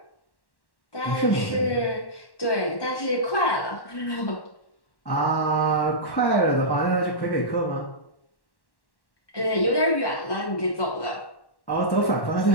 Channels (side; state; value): right; late; 1.1 ms